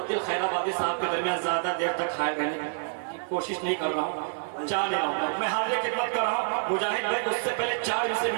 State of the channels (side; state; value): left; silent; 56 dB below the other